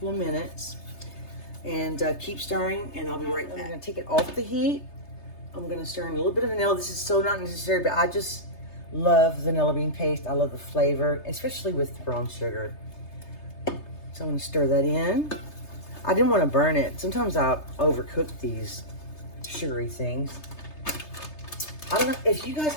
of minutes and keep stirring, and I'll be right back. I'm gonna take it off the heat. I'm gonna stir in a little bit of vanilla. This is so not necessary, but I just love vanilla bean paste. I love the flavor, especially with the brown sugar. So I'm gonna stir that in. I didn't want to burn it. Sometimes I overcook these sugary things. I don't know if you guys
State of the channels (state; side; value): late; right; 3.3 ms